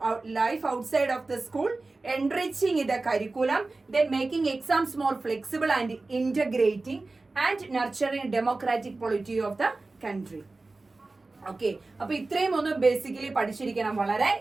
life outside of the school, enriching the curriculum, then making exams more flexible and integrating, and nurturing democratic polity of the country. Okay, അപ്പൊ ഇത്രയും ഒന്ന് ബേസിക്കലി പഠിച്ചിരിക്കണം, വളരെ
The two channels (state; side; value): quieter; left; 3.4 dB